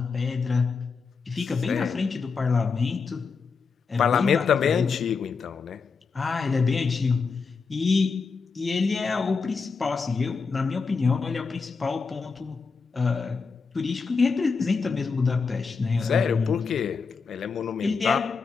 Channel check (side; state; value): right; quieter; 5.0 dB